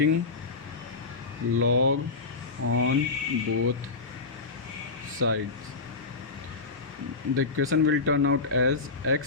log on both sides, the equation will turn out as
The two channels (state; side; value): quieter; right; 4.0 dB